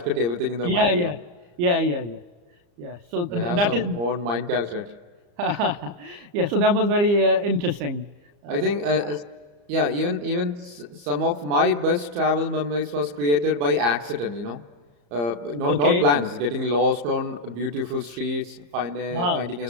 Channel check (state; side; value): late; left; 34 ms